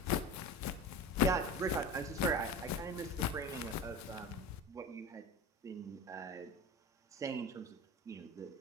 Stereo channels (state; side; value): normal; both; correlation 0.30